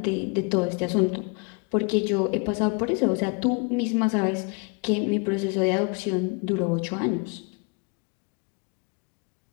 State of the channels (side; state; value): right; quieter; 33.3 dB